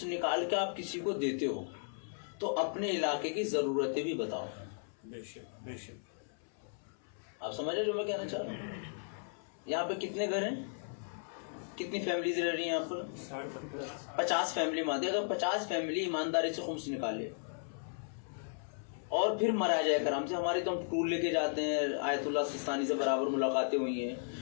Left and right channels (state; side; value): silent; right; 54 dB below the other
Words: نکال کے آپ کسی کو دیتے ہو تو اپنے علاقے کی ضرورتیں بھی بتاؤ. آپ سمجھ رہے جو میں کہنا چاہ رہا ہوں. یہاں پہ کتنے گھر ہیں, کتنی فیملیز رہ رہی ہیں یہاں پر؟ 50 فیملی مانتے. اگر 50 فیملی ایمانداری سے خمس نکالے اور پھر مراجع کرام سے, ہماری تو ہم ٹور لے کے جاتے ہیں, آیت اللہ سستانی سے برابر ملاقاتیں ہوئی ہیں,